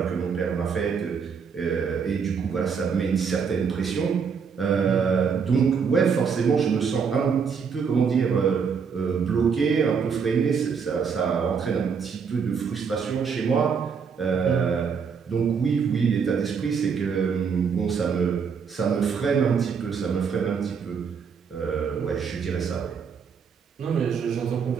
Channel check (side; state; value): left; quieter; 6.2 dB